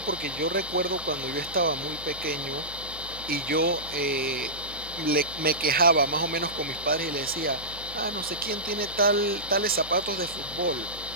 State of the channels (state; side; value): noise; right; hum, 18 dB below the sound